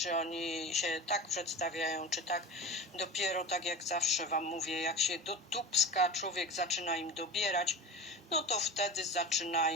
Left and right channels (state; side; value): normal; both; correlation 0.32